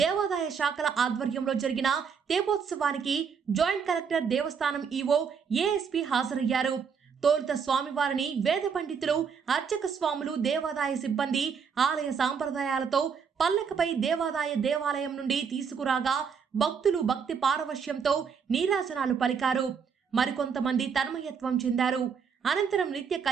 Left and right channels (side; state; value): left; quieter; 6.4 dB